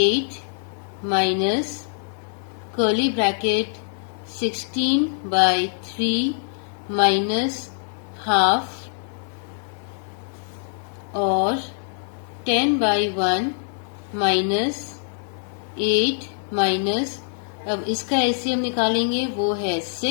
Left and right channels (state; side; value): silent; right; digital silence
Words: minus curly bracket 16/3 minus half और 10/1 माइनस 8 माइनस, अब इसका एलसीएम निकालेंगे वो है